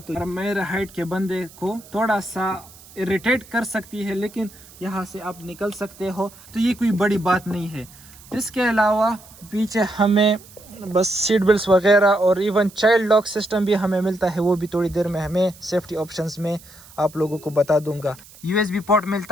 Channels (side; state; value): right; noise; hiss, 22 dB below the sound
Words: تو میرے ہائٹ کے بندے کو تھوڑا سا اریٹیٹ کر سکتی ہے لیکن یہاں سے آپ نکل سکتے ہو تو یہ کوئی بڑی بات نہیں ہے. اس کے علاوہ پیچھے ہمیں بس سیٹ بیلٹس وغیرہ اور ایون چائلڈ لاک سسٹم بھی ہمیں ملتا ہے. وہ بھی تھوڑی دیر میں ہمیں سیفٹی آپشنز میں آپ لوگوں کو بتا دوں گا. USB پورٹ